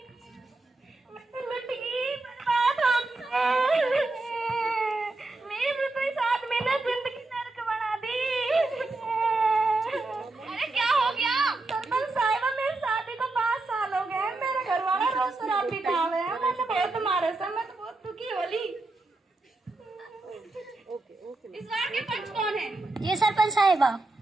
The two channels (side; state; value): left; quieter; 3.1 dB